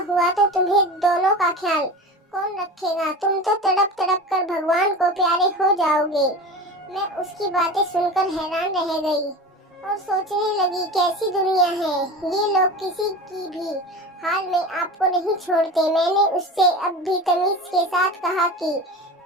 हुआ तो तुम्हें दोनों का ख्याल कौन रखेगा? तुम तो तड़प तड़प कर भगवान को प्यारे हो जाओगे। मैं उसकी बातें सुनकर हैरान रह गई और सोचने लगी, कैसी दुनिया है ये, लोग किसी की भी हाल में आपको नहीं छोड़ते। मैंने उससे अब भी तमीज के साथ कहा कि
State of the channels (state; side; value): normal; both; correlation 0.31